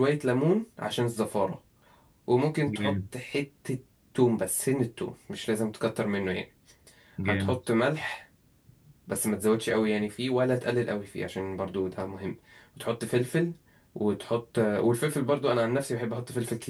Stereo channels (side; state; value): both; identical; correlation 1.00